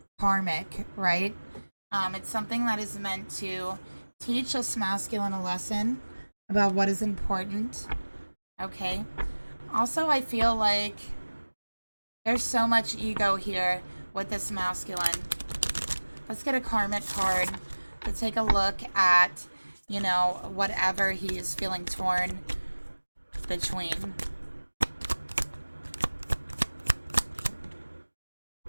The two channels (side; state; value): both; inverted; correlation -1.00